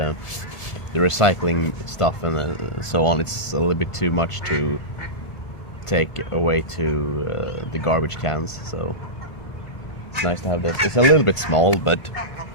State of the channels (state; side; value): late; right; 1.5 ms